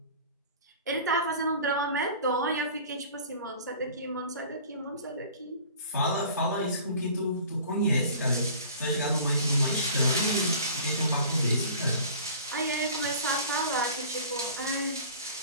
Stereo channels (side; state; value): both; inverted; correlation -0.43